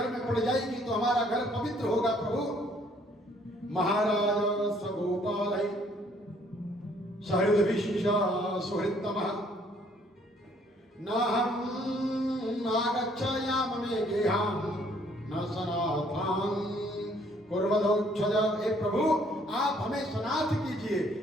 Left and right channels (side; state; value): both; normal; correlation 0.63